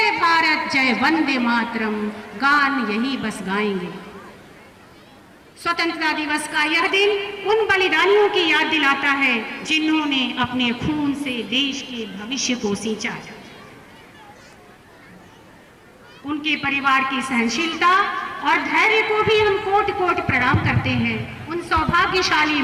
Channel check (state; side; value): identical; both; correlation 1.00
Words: भारत जय वंदे मातरम गान यही बस गाएंगे। स्वतंत्रता दिवस का यह दिन उन बलिदानियों की याद दिलाता है जिन्होंने अपने खून से देश के भविष्य को सींचा। उनके परिवार की सहनशीलता और धैर्य को भी हम कोटि कोटि प्रणाम करते हैं। उन सौभाग्यशाली